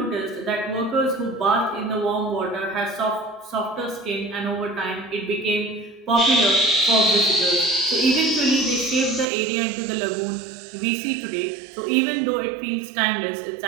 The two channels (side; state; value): left; drops out; at 9.2 s